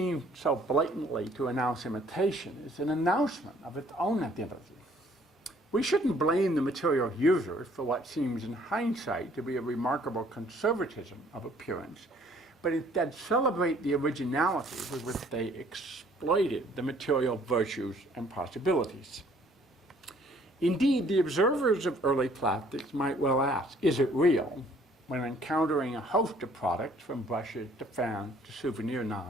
so blatantly to announce imitation is an announcement of its own identity. We shouldn't blame the material users for what seems in hindsight to be a remarkable conservatism of appearance, but instead celebrate the originality with which they exploited the material virtues and possibilities. Indeed, the observers of early plastics might well ask, is it real? When encountering a host of products, from brushes to fans to souvenir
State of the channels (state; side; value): normal; both; correlation 0.60